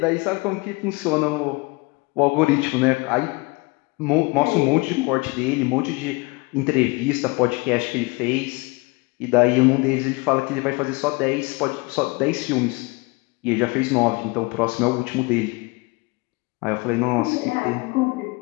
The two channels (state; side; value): quieter; right; 26.4 dB